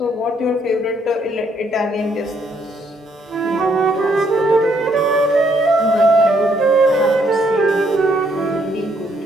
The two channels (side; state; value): both; normal; correlation 0.70